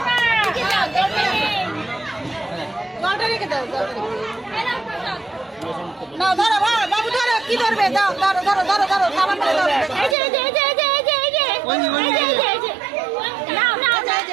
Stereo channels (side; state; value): left; drops out; at 10.2 s